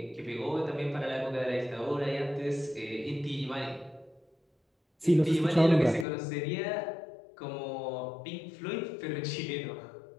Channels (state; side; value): drops out; right; at 6.1 s